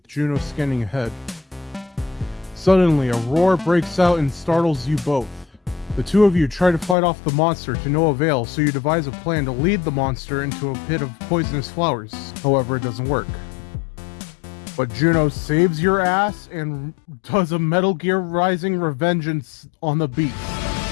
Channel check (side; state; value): right; drops out; at 7.0 s